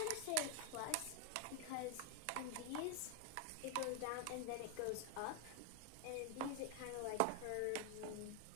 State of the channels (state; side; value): different; both; correlation 0.01